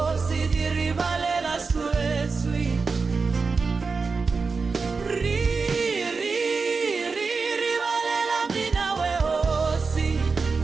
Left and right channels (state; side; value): quieter; left; 4.6 dB